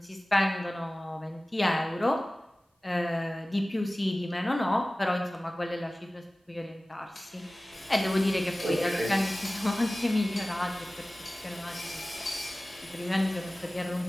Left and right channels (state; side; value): normal; both; correlation 0.97